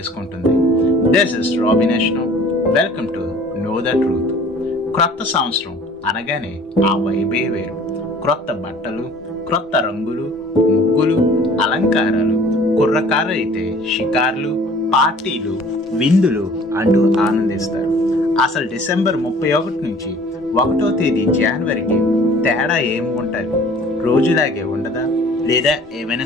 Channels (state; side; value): normal; both; correlation 0.50